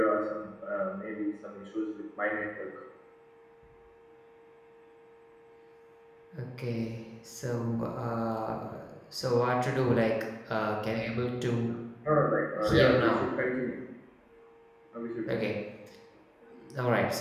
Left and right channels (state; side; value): identical; both; correlation 1.00